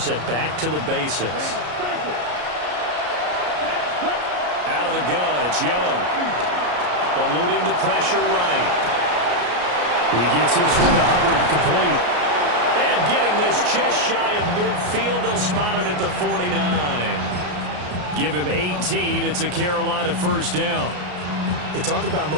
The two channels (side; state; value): left; late; 33 ms